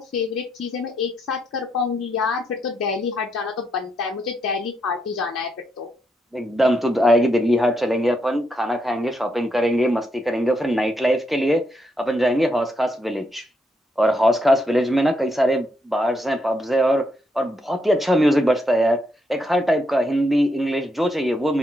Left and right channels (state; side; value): normal; both; correlation 0.79